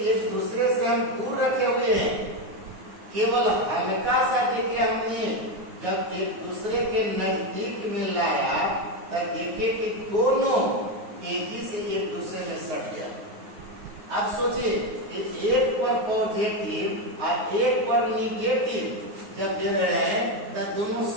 एक दूसरे से हम दूर रखे हुए हैं, केवल हल्का सा देखिए हमने जब एक दूसरे के नजदीक में लाया तब देखिए कि दोनों तेजी से एक दूसरे में सट गया। अब सोचिए कि एक पर पॉजिटिव और एक पर निगेटिव जब दे रहे हैं तब दोनों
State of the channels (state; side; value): late; left; 9.5 ms